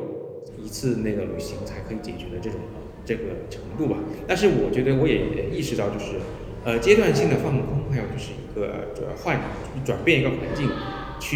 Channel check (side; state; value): both; identical; correlation 1.00